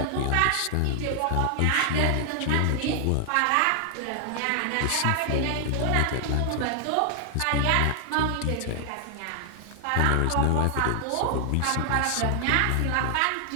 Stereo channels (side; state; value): both; different; correlation 0.00